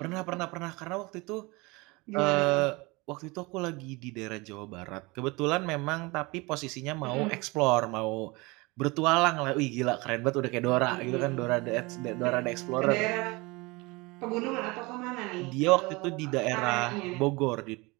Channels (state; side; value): quieter; left; 24.8 dB